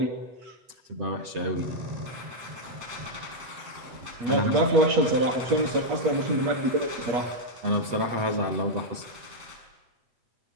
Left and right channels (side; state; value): left; late; 8.0 ms